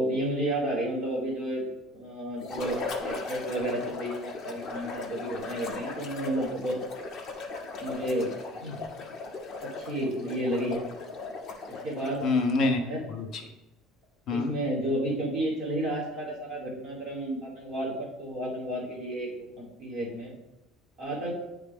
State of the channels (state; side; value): normal; both; correlation 0.46